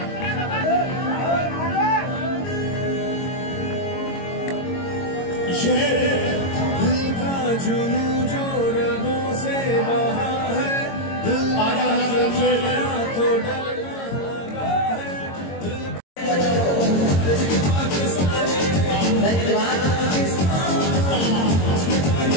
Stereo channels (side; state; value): right; late; 22 ms